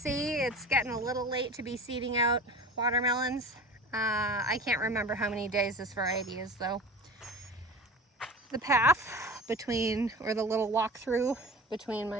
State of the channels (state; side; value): normal; both; correlation 0.35